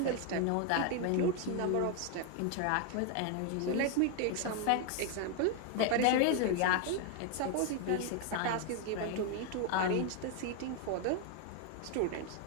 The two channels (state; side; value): different; both; correlation 0.01